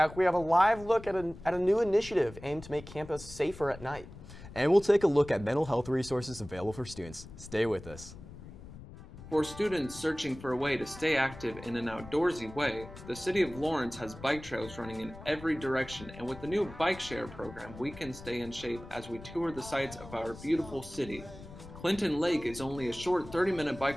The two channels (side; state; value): left; noise; rumble, 15 dB below the sound